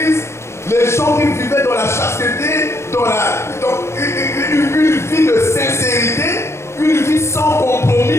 les gens qui vivaient dans la chasteté, dans une vie de sincérité, une vie sans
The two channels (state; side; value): late; right; 0.13 ms